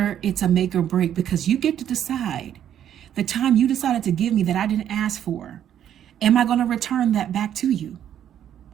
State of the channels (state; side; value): quieter; left; 10.2 dB